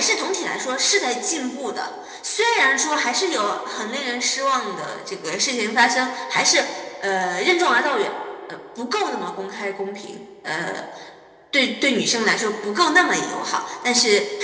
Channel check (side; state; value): both; identical; correlation 1.00